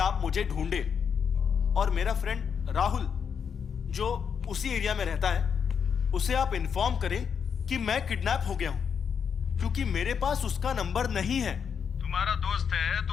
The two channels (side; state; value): right; quieter; 7.0 dB